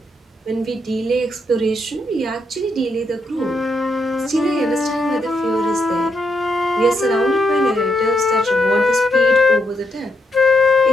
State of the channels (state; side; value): normal; both; correlation 0.80